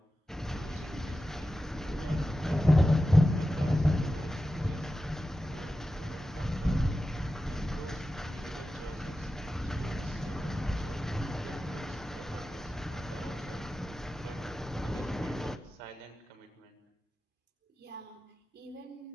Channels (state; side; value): normal; both; correlation 0.93